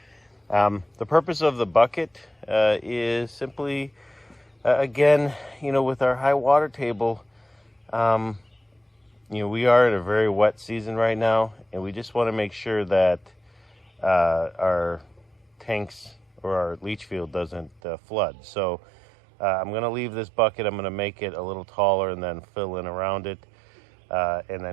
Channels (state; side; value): drops out; left; at 17.8 s